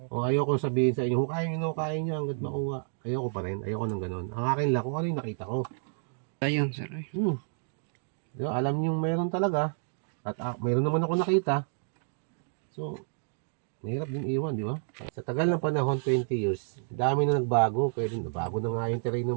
O ayoko sabihin sa inyo, hukayin nyo hanggat makuha. Ayoko pa rin, ayoko nang ganun. Ang akin lang, kung ano yung nakita ko. Ayun, sir. Diba, alam nyo mayroon talaga. At mayroon naman ako nakita. So, mahirap din iwan, di ba? Sa tagal ng panahon, 20 years, dami na nagbago. Pwede nabago na nga yung terrain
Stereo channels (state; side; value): silent; left; digital silence